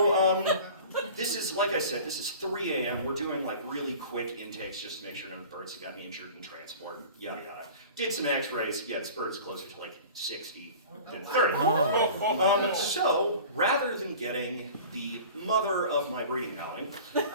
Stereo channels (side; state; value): both; inverted; correlation -0.40